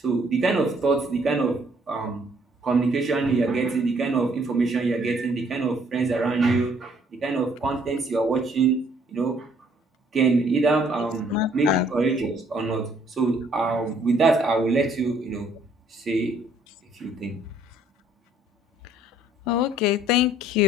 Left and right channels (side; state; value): both; normal; correlation 0.63